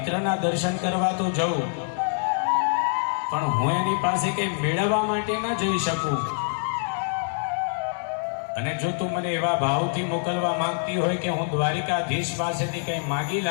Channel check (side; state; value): right; silent; 62 dB below the other